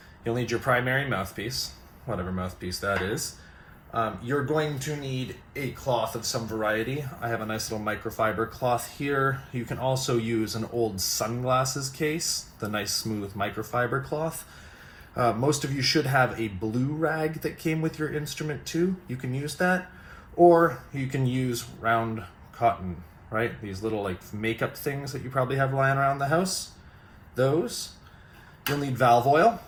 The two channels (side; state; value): both; identical; correlation 1.00